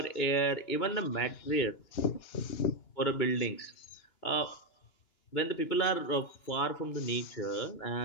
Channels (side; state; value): right; late; 2.9 ms